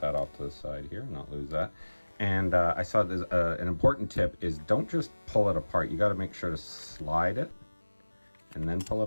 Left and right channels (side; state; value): both; inverted; correlation -1.00